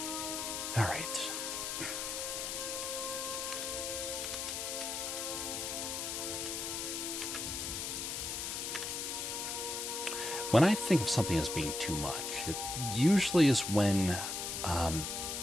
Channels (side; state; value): left; noise; hiss, 3 dB below the sound